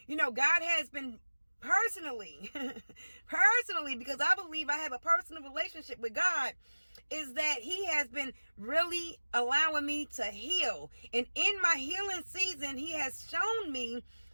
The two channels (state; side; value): inverted; both; correlation -1.00